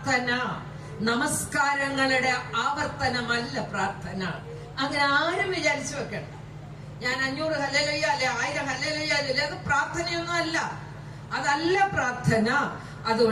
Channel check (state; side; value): identical; both; correlation 1.00